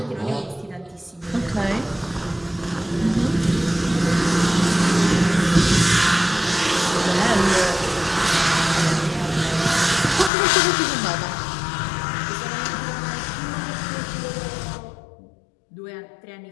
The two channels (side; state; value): right; drops out; at 10.3 s